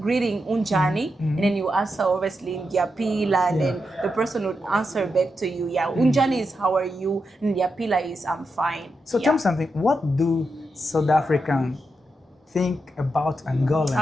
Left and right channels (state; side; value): normal; both; correlation 0.86